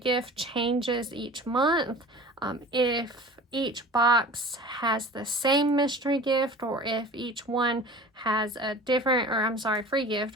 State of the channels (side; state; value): both; normal; correlation 0.40